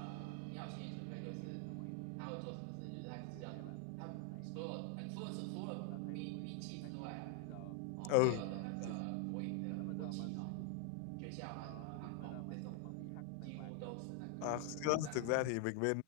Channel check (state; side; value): different; both; correlation 0.00